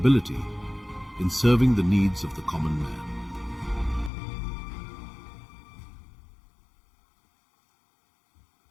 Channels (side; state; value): right; drops out; at 4.1 s